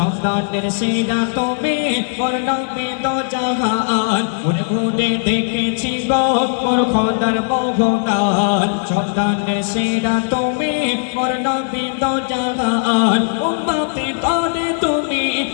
সেরা তুমি মোর নবী দো জাহান ঘুরে ঘুরে দেখেছি গো মোর খোদার বহুদান সন্তানের সেরা তুমি মোর নবী দো জাহান উম্মতি করে তুমি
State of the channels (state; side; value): silent; right; digital silence